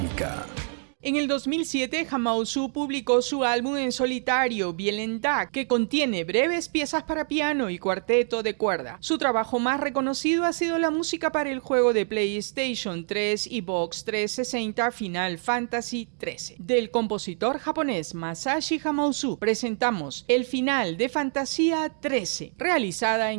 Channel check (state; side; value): silent; left; 61 dB below the other